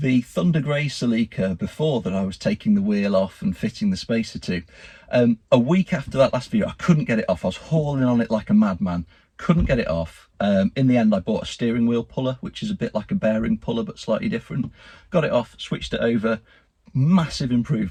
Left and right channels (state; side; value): identical; both; correlation 1.00